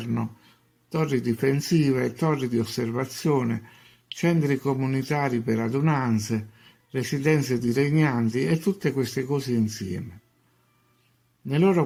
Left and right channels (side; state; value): both; identical; correlation 1.00